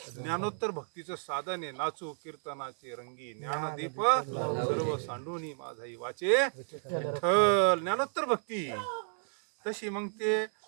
ज्ञानोत्तर भक्तीचं साधन आहे. नाचू कीर्तनाचे रंगी ज्ञानदीप सर्व सांडूनी माझाही वाचे विठ्ठल. ज्ञानोत्तर भक्ती तशी. मग ते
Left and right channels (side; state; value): left; silent; digital silence